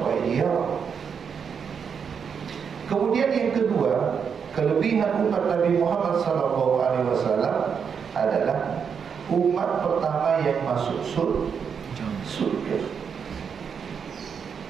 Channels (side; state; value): left; quieter; 6.7 dB